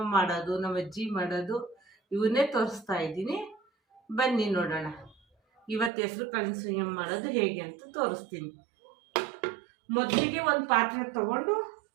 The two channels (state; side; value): drops out; left; at 5.9 s